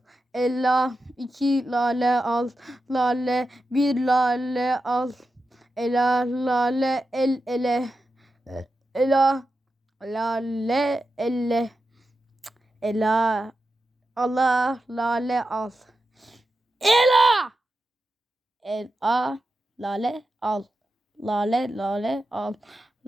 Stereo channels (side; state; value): both; normal; correlation 0.90